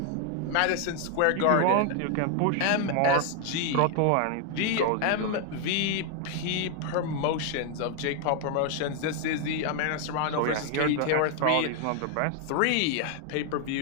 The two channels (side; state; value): both; different; correlation 0.00